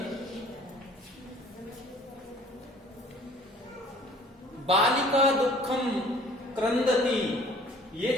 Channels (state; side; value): normal; both; correlation 0.53